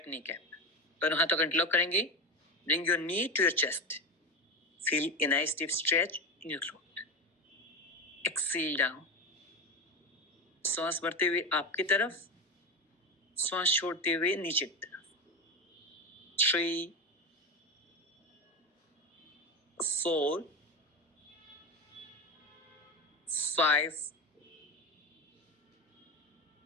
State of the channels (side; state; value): both; normal; correlation 0.19